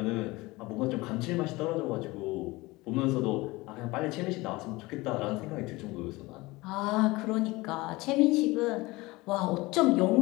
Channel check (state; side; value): quieter; right; 21.6 dB